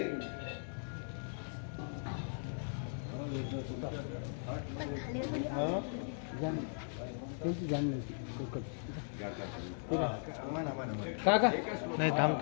काका नाही थांब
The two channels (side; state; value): right; silent; digital silence